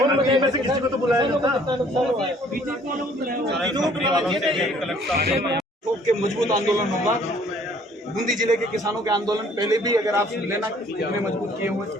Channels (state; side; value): normal; both; correlation 0.58